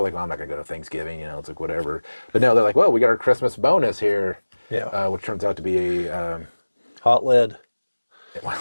like, well, I'm not going to go to Thanksgiving, it's like whatever. But no, they're like, well, we got our Christmas bonus here. Yeah. Which turns out to be a... hot lead. Well,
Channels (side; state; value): both; inverted; correlation -1.00